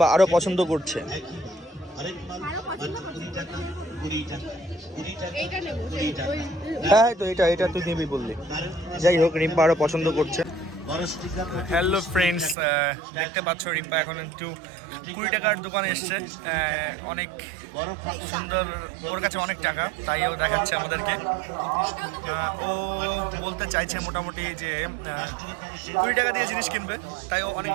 আরো পছন্দ করছে। হ্যাঁ, তো এটা তুই নিবি বললি। যাই হোক, রিম্পা আরো পছন্দ করছে। হ্যালো ফ্রেন্ডস, দেখতে পাচ্ছ রিম্পা এখন একটু 20 টাকার দোকানে এসছে। অনেক সুন্দর, ওর কাছে অনেক টাকা, তাই ও দেখাচ্ছে আমাদেরকে। ও বলতে চাইছে মোটামুটি যে 20 টাকা দিয়ে জিনিস কিনবে, তাই ও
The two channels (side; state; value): left; drops out; at 12.6 s